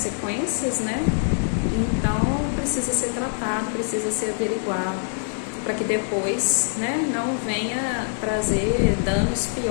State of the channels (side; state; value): right; silent; digital silence